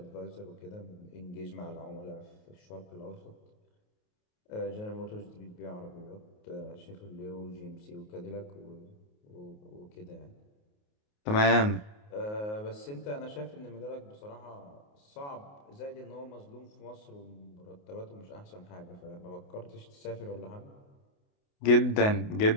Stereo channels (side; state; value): right; late; 28 ms